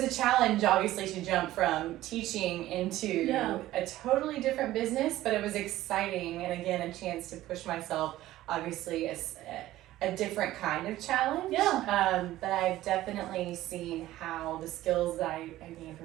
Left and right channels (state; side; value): quieter; left; 15.2 dB